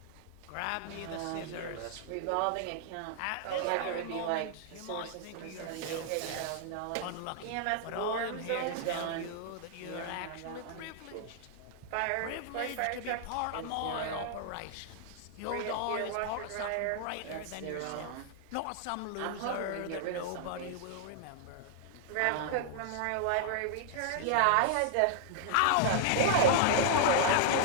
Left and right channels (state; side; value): different; both; correlation -0.01